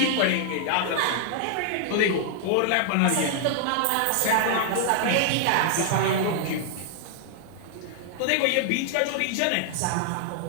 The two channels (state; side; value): different; both; correlation 0.00